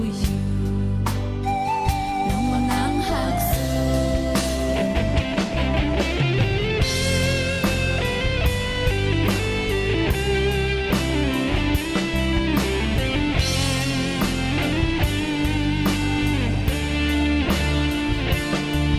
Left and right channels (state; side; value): identical; both; correlation 1.00